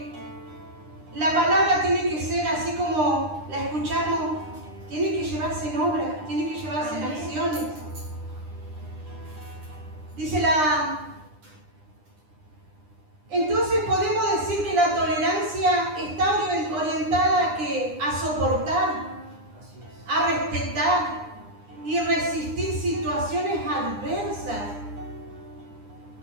la palabra tiene que ser así como la escuchamos, tiene que llevarse en obra, tiene que llevarse en acciones. Dice entonces podemos decir que la tolerancia está orientada a soportar, a respetar y resistir situaciones adversas,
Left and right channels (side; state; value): left; late; 9.9 ms